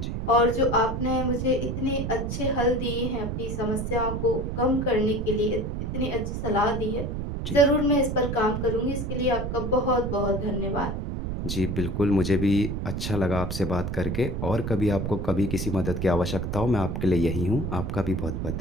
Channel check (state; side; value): noise; right; rumble, 3 dB below the sound